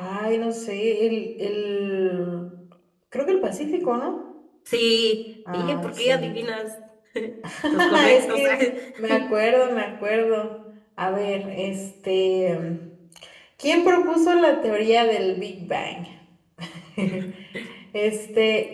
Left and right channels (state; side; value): identical; both; correlation 1.00